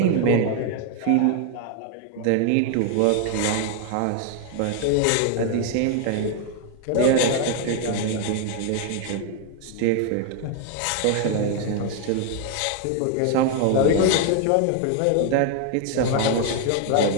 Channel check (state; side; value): different; both; correlation 0.01